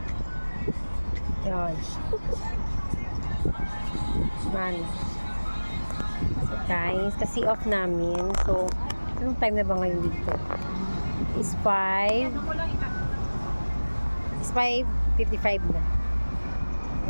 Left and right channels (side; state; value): both; inverted; correlation -1.00